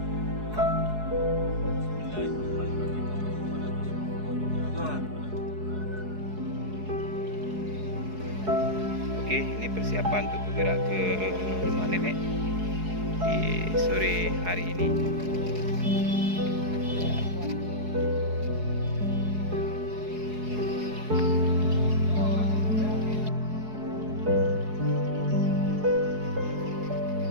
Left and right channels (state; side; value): late; left; 4.7 ms